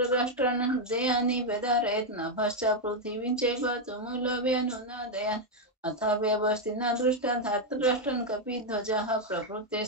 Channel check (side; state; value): both; normal; correlation 0.02